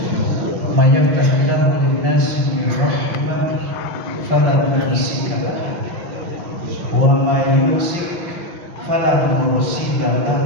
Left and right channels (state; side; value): late; left; 5.7 ms